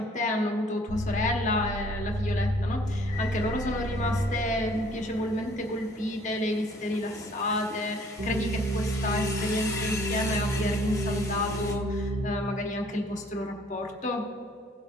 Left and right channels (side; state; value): both; normal; correlation 0.58